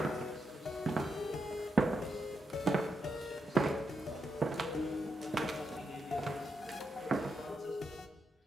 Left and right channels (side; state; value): both; normal; correlation 0.84